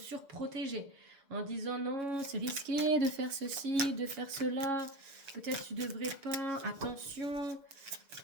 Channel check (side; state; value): left; late; 6.7 ms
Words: en disant non, c'est risqué de faire ceci, de faire cela, peut-être tu devrais pas, attention.